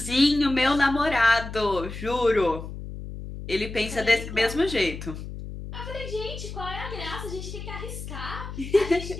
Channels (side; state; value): left; noise; hum, 9 dB below the sound